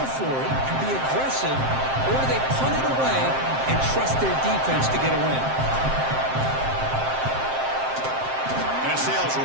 for it and be aggressive, or do they punt it away and trust their defense to get a win? And it sails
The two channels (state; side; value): late; left; 7.6 ms